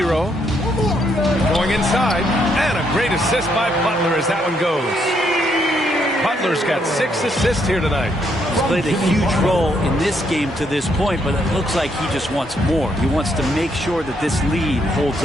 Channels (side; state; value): both; normal; correlation 0.74